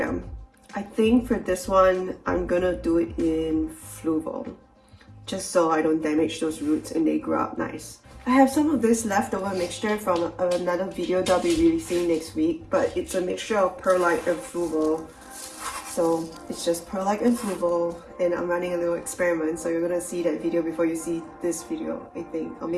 I think for this one I'm gonna do it in fluval, just so I don't damage those roots and they grow up nice. I have some of this leftover mixture from another video that I'll be releasing next week, but it's a mixture of perlite and fluval. So it's just perlite and fluval, and I'm running a little experiment, so you're gonna see that video before you see this video, I think. Or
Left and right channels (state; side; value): identical; both; correlation 1.00